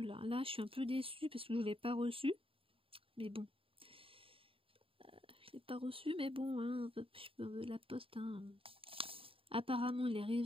là. Là, je suis un peu déçue parce que je ne l'ai pas reçu. Mais bon. Je l'ai pas reçu, mais bon, hein, la poste, hein. Apparemment, il est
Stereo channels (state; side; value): late; left; 0.26 ms